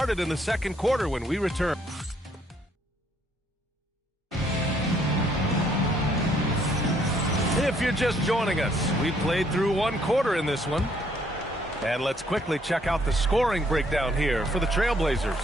in the second quarter when we return. If you're just joining us, we played through one quarter in this one. And let's quickly check out the scoring breakdown here for the Trailblazers.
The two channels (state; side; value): normal; both; correlation 0.67